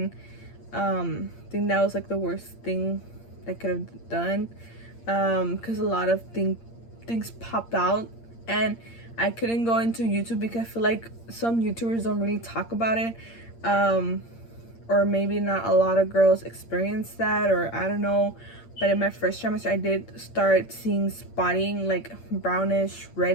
I think that was like the worst thing I could have done, because a lot of things popped out, and I couldn't go into YouTube because I feel like some YouTubers don't really talk about it, or maybe not a lot of girls experience that, or I don't know. But in my first trimester, I did start seeing spotting, like brownish,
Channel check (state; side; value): late; right; 8.7 ms